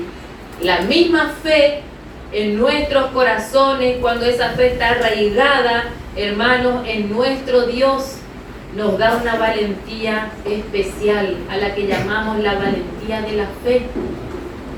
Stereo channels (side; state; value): both; identical; correlation 1.00